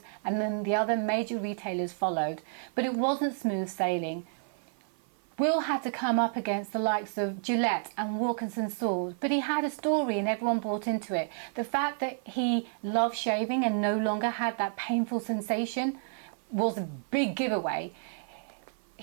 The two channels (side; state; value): left; silent; 55 dB below the other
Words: and then the other major retailers followed. But it wasn't smooth sailing. Will had to come up against the likes of Gillette and Wilkinson Swords, but he had a story and everyone bought into it. The fact that he loved shaving and no longer had that painful sensation was a big giveaway.